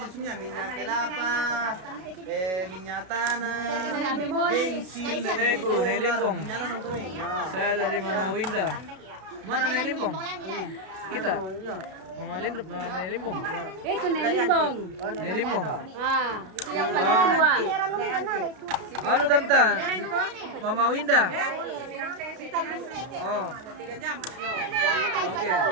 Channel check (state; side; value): late; left; 32 ms